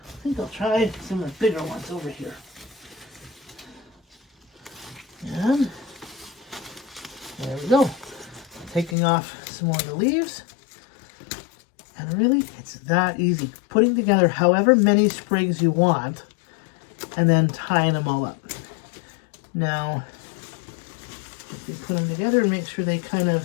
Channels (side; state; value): right; drops out; at 9.0 s